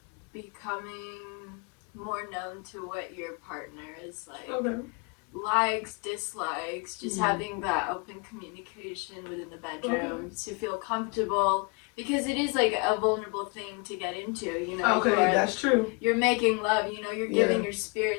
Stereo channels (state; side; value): quieter; right; 31.6 dB